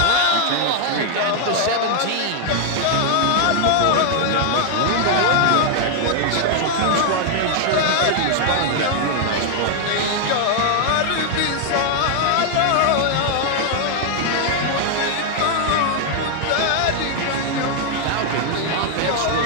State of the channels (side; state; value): both; different; correlation 0.00